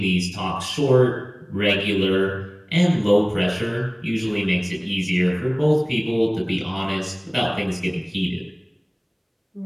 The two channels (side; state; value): both; identical; correlation 1.00